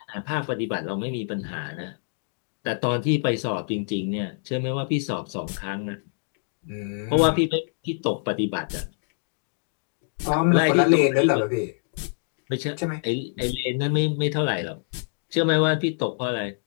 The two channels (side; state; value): right; silent; digital silence